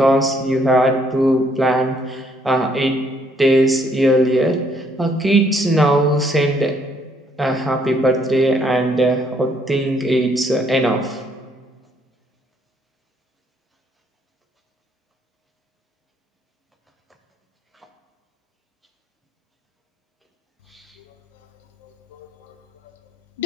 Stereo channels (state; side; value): normal; both; correlation 0.67